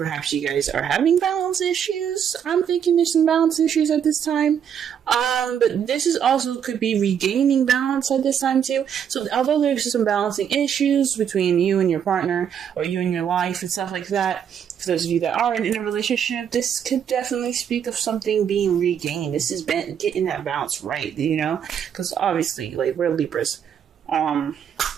you guys are having balance issues. I'm thinking there's some balance issues at this time. But this is also could be regaining balance at this time too. So although there's some balancing issues between you and your partner or you and your life and stuff like that, for those of you that are in a relationship, this could definitely speak of something being regained. This is getting that balance right, you know? Because obviously, like, we're Libras.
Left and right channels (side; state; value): left; quieter; 8.4 dB